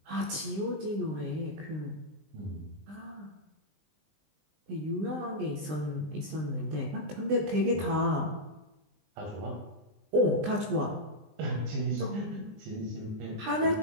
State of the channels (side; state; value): left; late; 20 ms